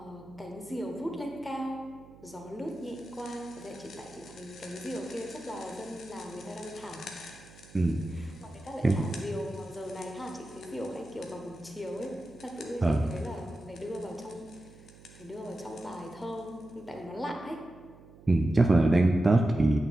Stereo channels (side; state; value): right; noise; hum, 21 dB below the sound